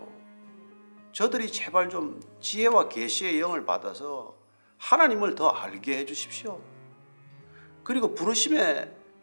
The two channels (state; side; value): inverted; both; correlation -1.00